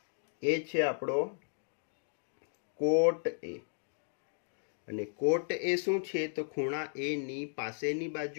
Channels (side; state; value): right; silent; digital silence